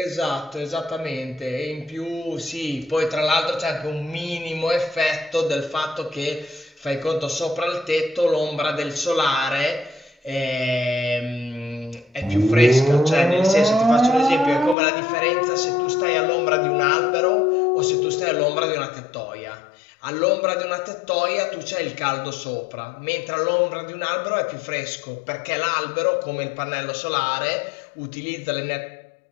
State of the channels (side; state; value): right; drops out; at 14.8 s